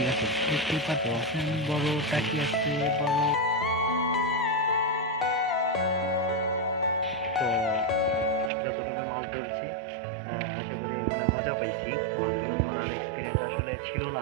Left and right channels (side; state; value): left; drops out; at 8.5 s